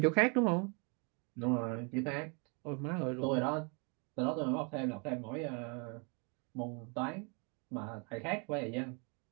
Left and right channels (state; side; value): quieter; left; 34.8 dB